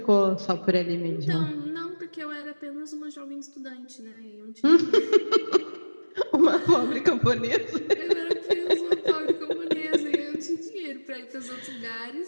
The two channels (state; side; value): inverted; both; correlation -1.00